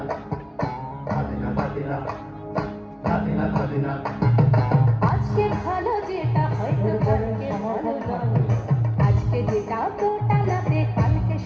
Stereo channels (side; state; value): both; identical; correlation 1.00